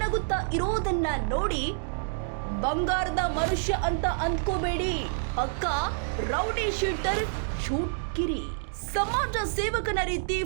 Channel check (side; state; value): left; silent; digital silence